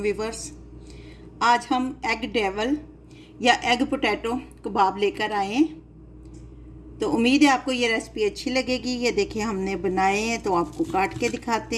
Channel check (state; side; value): identical; both; correlation 1.00